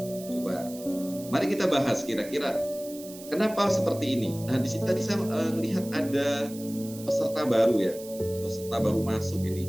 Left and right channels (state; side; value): noise; right; hiss, 16 dB below the sound